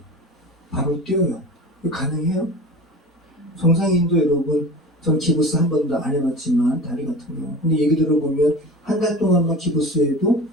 바로 뛰어요. 이거 가능해요? 정상인도 여러분, 전 기부스 한 번도 안 해봤지만 다리 같은 경우. 근데 얘기 들어보면 한 달 동안만 기부스해도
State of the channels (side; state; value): both; normal; correlation 0.35